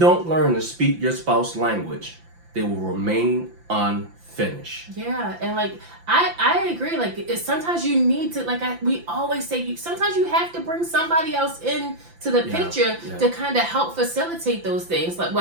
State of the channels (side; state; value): left; late; 5.8 ms